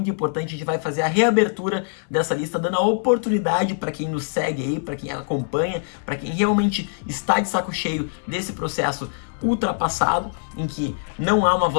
importante. A gente vai fazer a reabertura dessa lista, dando a oportunidade para quem nos segue aí, para quem acompanha, para quem realmente está de saco cheio desse processo ultrapassado, em que não há uma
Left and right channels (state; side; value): silent; right; digital silence